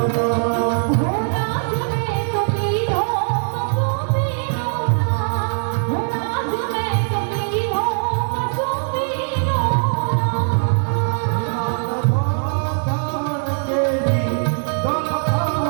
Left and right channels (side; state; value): left; silent; digital silence